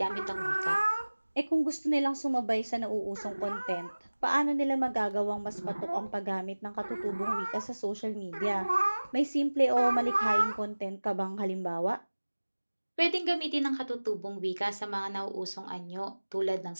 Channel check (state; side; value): inverted; both; correlation -1.00